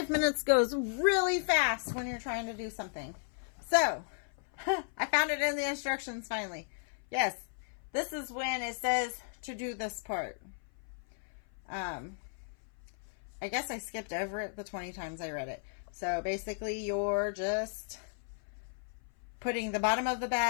minutes goes really fast when you're trying to do something. So, I found it in the instructions finally. Yes, this is when it says to do this part. I guess I skipped over it the 20 times I read it. So basically you're just putting the bottom of the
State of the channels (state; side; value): silent; right; 55 dB below the other